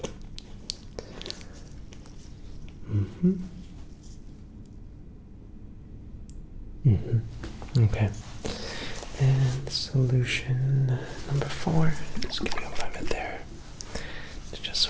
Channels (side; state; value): both; identical; correlation 1.00